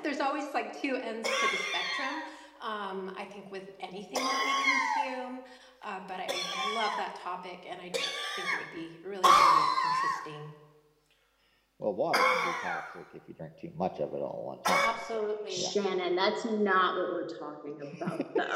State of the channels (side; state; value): both; identical; correlation 1.00